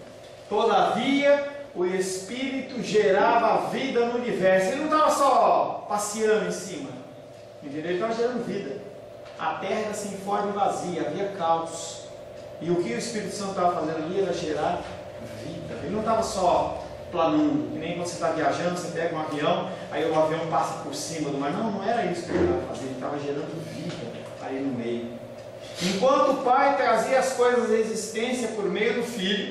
todavia o Espírito gerava vida no universo. Ele não estava só passeando em cima, entendeu? Ele estava gerando vida. A terra era sem forma e vazia, havia caos. E o que o Espírito Santo estava fazendo ali era gerar vida. Ele não estava só planando, que nem quando você está viajando, você pega um avião, aí o avião passa por cima do mar. Não, não era isso que ele estava fazendo, ele estava gerando vida ali no meio. Enquanto o Pai trazia as coisas à existência por meio do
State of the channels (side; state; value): both; identical; correlation 1.00